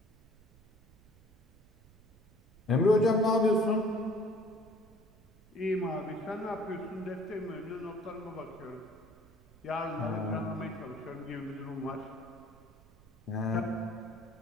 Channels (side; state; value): right; noise; rumble, 27 dB below the sound